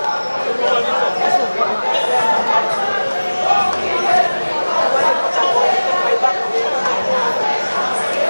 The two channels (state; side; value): inverted; both; correlation -1.00